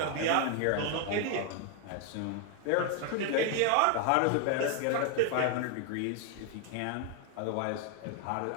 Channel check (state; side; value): different; both; correlation 0.01